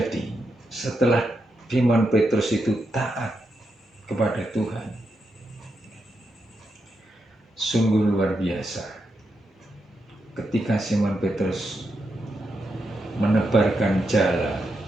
setelah Simon Petrus itu taat kepada Tuhan? Sungguh luar biasa. Ketika Simon Petrus menebarkan jala,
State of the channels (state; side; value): normal; both; correlation 0.84